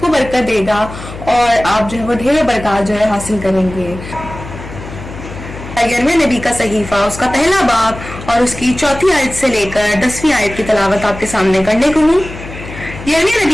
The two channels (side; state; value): left; noise; hum, 12 dB below the sound